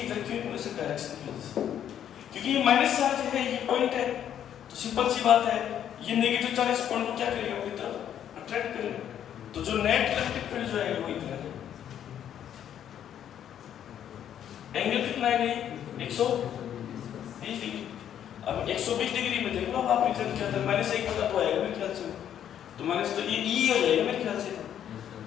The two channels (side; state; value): right; quieter; 9.9 dB